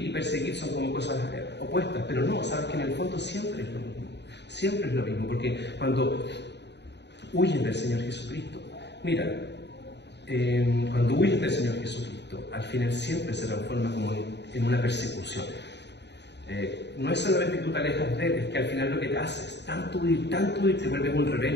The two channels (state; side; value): late; right; 0.50 ms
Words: perseguir son como cosas opuestas, pero no, sabes que en el fondo siempre es lo mismo, siempre es lo mismo, porque cuando huyen del Señor Jesucristo, mira, cuando huyes del Señor Jesucristo, al final siempre se transforma como en una persecución. No es solamente que tú te alejas de Él, es que al final lo que te haces, tanto huir, te vuelves un